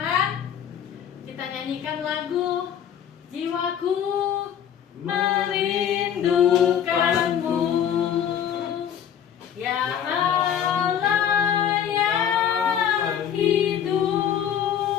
Kita nyanyikan lagu Jiwaku Merindukanmu, ya Allah yang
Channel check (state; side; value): quieter; right; 9.0 dB